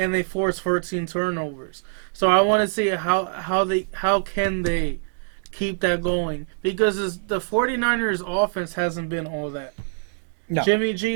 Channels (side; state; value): left; silent; digital silence